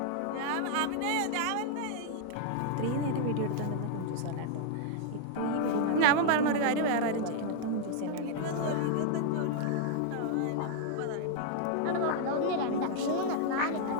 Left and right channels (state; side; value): different; both; correlation 0.00